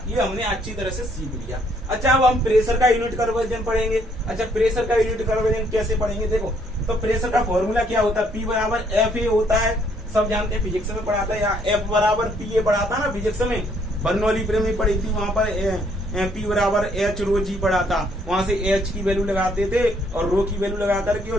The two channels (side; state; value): both; normal; correlation 0.67